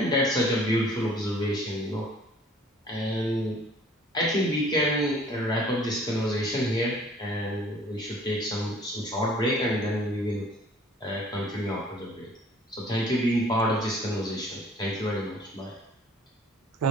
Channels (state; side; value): normal; both; correlation 0.54